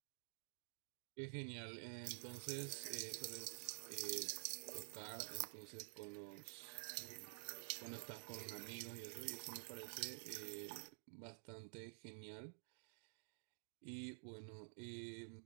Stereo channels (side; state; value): left; silent; digital silence